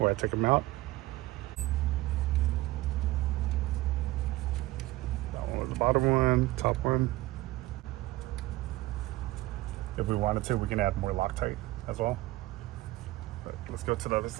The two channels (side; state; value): left; quieter; 18.1 dB